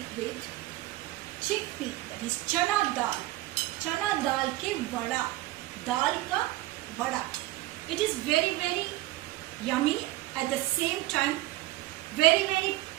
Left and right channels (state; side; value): quieter; left; 17.4 dB